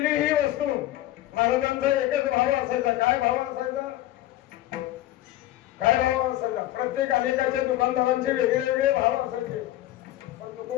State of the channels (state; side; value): quieter; right; 14.7 dB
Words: ही वस्तू? महाराजांचा एकच भाव असायचा. काय भाव असायचा? काय भाव असायचा? प्रत्येक अनेकाच्या दुकानदारांचे वेगळे वेगळे भाव असायचे, पण